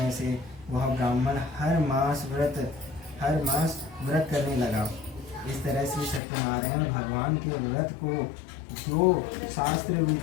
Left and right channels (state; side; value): drops out; right; at 6.2 s